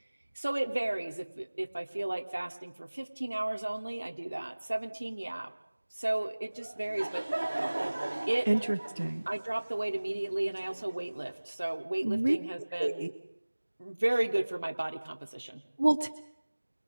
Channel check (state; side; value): inverted; both; correlation -1.00